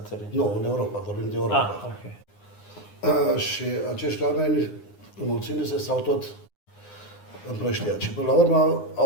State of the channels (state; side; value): late; right; 9.7 ms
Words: Nu, în Europa, vorbim de Europa. Okay. Și acești oameni, înmulțindu-se, s-au tot împrăștiat. Și până la urmă